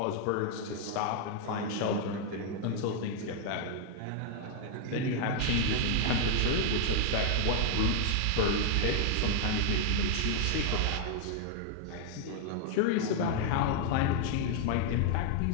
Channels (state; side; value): different; both; correlation 0.00